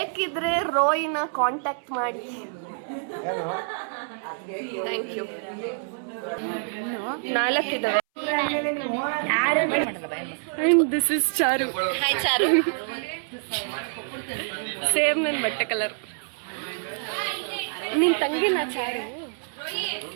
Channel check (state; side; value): silent; left; 61 dB below the other